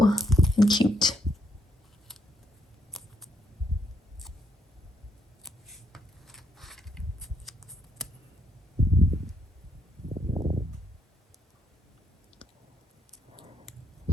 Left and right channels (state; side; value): normal; both; correlation 0.75